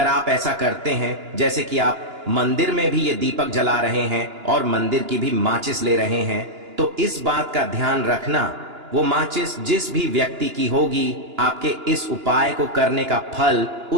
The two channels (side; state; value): left; late; 2.9 ms